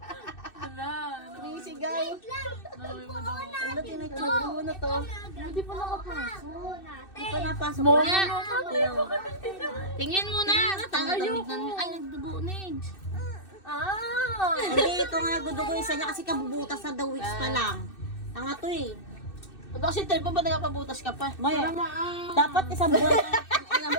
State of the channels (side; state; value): right; late; 2.6 ms